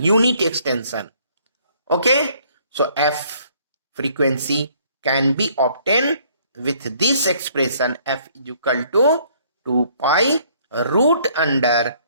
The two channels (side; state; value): both; inverted; correlation -0.62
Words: Okay, so f frequency can be obtained with this expression f is equal to 2 pi root under